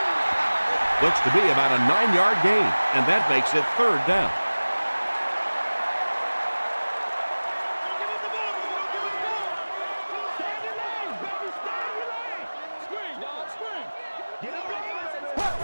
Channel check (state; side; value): inverted; both; correlation -1.00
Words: Looks to be about a 9-yard gain, and that makes it 3rd down.